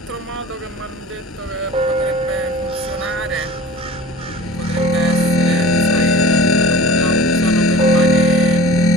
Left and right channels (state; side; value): normal; both; correlation 0.40